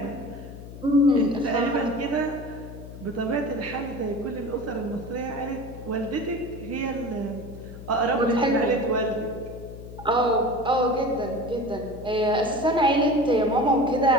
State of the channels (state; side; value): noise; left; hum, 13 dB below the sound